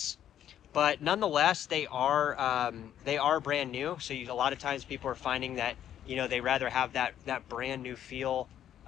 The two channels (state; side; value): quieter; right; 10.6 dB